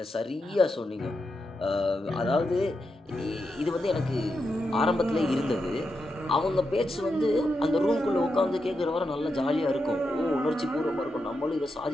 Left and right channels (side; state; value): both; normal; correlation 0.86